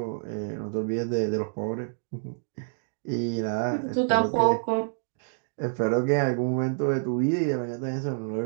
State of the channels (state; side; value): silent; left; digital silence